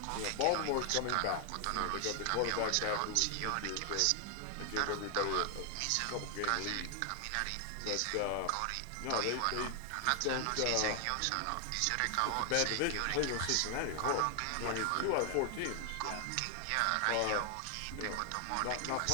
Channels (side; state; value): both; different; correlation 0.00